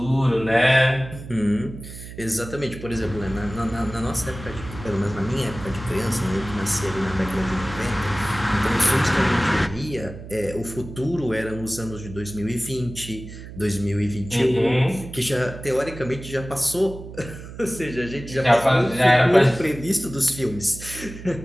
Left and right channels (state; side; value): noise; right; hum, 13 dB below the sound